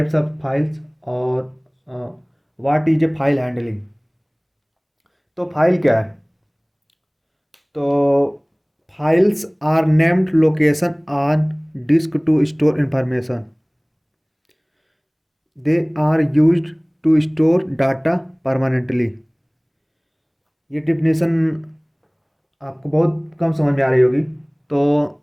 ऑफ फाइल्स, और what is a file handling. तो फाइल क्या है? तो files are named location on disk to store information. They are used to store data permanently. ये डिफिनेशन आपको बहुत कम समझ में आ रही होगी। तो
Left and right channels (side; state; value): both; identical; correlation 1.00